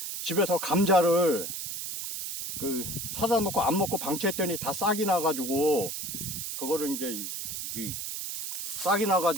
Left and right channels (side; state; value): right; noise; hiss, 5 dB below the sound